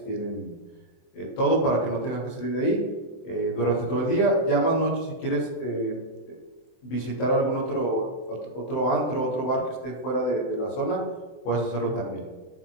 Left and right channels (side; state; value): right; late; 23 ms